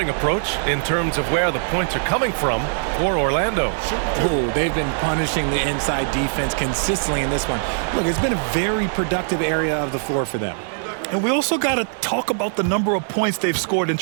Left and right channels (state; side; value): silent; left; 65 dB below the other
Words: approach in terms of where the points are coming from for Orlando. Oh, they've been punishing the inside defense consistently in this one. Look, it's been a very productive area of the floor for them. And we also got to talk about the number of points they've scored in